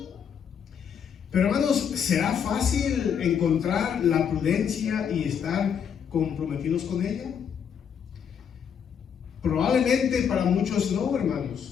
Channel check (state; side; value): quieter; right; 7.6 dB